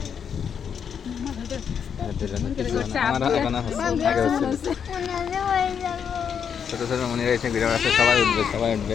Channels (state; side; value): quieter; right; 7.5 dB